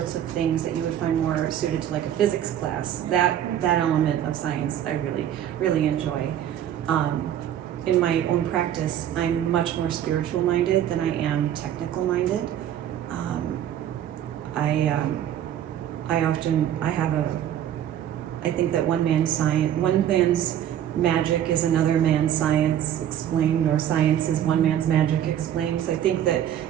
of things that you would find more suited to like a physics class, that element of science I really enjoy. In my own practice, I'm much more spiritual minded than I am technical minded. I think that one man's magic is another man's science explained, or science is one man's magic explained. So I think that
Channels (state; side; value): quieter; left; 10.7 dB